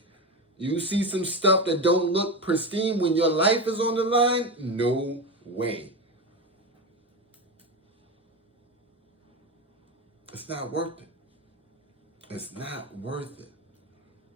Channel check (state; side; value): normal; both; correlation 0.19